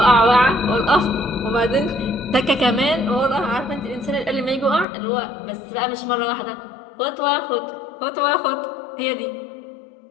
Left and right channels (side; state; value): right; drops out; at 4.9 s